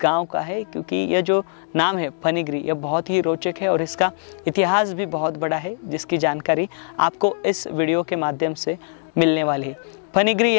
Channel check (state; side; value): silent; right; digital silence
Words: गांव का है, क्योंकि यह जो नाम है फनीगिरी यह बहुत ही रोचक है और इसका इतिहास भी बहुत बड़ा है, जिसकी जानकारी आपको इस वीडियो के माध्यम से मिलने वाली है। फनीगिरी